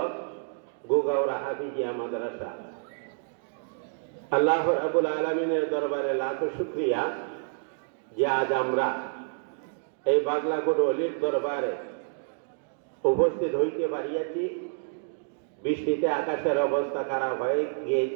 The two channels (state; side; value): silent; left; digital silence